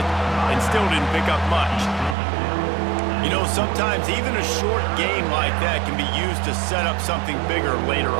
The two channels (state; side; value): drops out; left; at 2.1 s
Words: and still didn't pick up much. You know, sometimes even a short game like that can be used to set up something bigger later